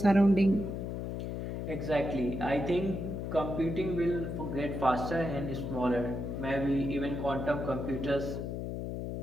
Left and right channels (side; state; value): left; noise; hum, 4 dB below the sound